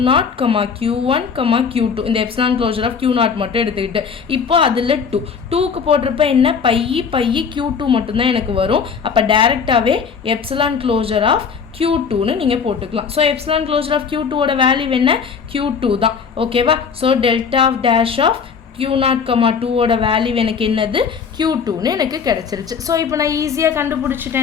Q1, Q2 இந்த எப்சிலான் க்ளோஷர் ஆஃப் Q0 மட்டும் எடுத்துக்கிட்டு இப்போ அதில் 2க்கு போட்டிருப்ப என்ன பை Q2 மட்டும்தான் எனக்கு வரும். அப்போ டைரெக்டாகவே எப்சிலான் க்ளோஷர் ஆஃப் Q2ன்னு நீங்கள் போட்டுக்கலாம். ஸோ எப்சிலான் க்ளோஷர் ஆஃப் Q2ஓட வேல்யூ என்ன, Q2 தான். ஓகேவா? So delta of dash of Q0, 2ஓட வேல்யூ எனக்கு என்னது, Q2ன்னு எனக்கு கிடச்சிருச்சு. ஸோ இப்போ நான் ஈஸியாக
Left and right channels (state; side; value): quieter; right; 6.2 dB